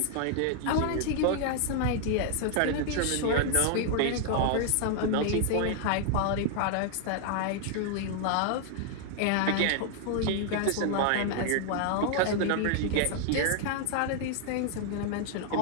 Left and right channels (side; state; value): both; different; correlation 0.00